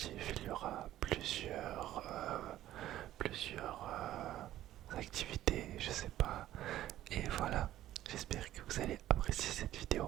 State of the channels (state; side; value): quieter; left; 13.5 dB